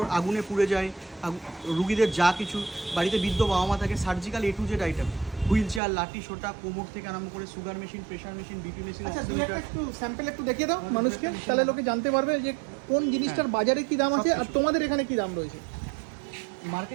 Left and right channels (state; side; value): drops out; left; at 5.8 s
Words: আগুনে পুড়ে যায়, রুগীদের যা কিছু বাড়িতে বৃদ্ধ বাবা মা থাকে, surgical A to Z item, wheel chair, লাঠি সোটা, কোমর থেকে আরম্ভ করে sugar machine, pressure machine, BP machine, আচ্ছা দুই একটা একটু স্যাম্পল একটু দেখিয়ে দাও আমাদের মানুষকে, একটা তাহলে machine লোকে জানতে পারবে যে কোন জিনিসটার বাজারে কি দাম আছে আর সবকিছু। তোমাদের এখানে কি দাম রয়েছে।